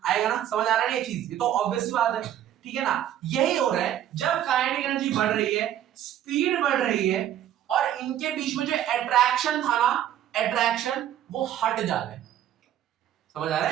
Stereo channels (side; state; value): left; quieter; 11.2 dB